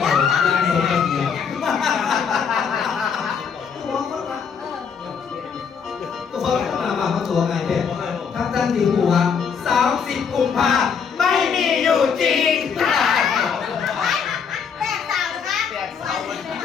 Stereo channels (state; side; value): quieter; right; 6.5 dB